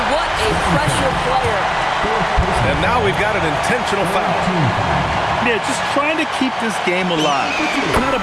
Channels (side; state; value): both; identical; correlation 1.00